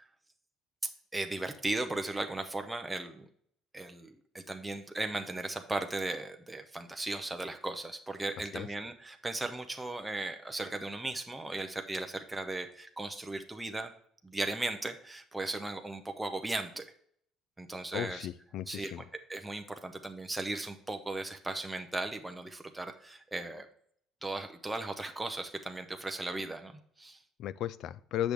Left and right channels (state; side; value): normal; both; correlation 0.84